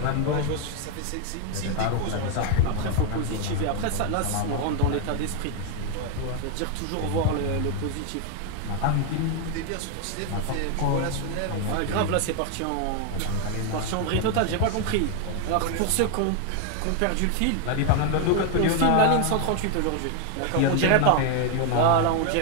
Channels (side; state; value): both; different; correlation 0.01